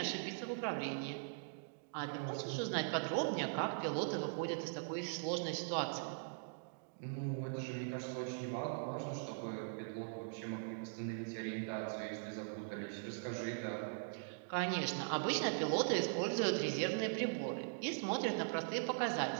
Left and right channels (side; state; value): left; silent; digital silence